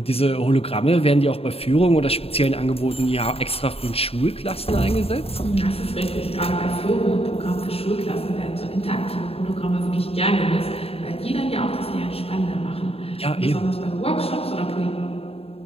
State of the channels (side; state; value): right; late; 0.28 ms